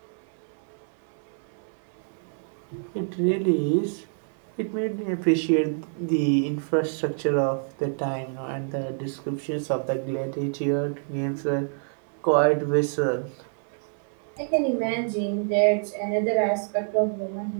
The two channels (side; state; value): left; silent; digital silence